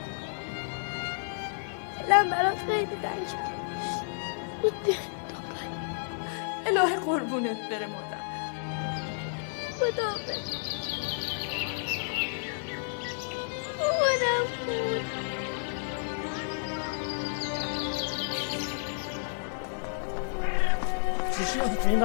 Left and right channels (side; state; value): right; silent; digital silence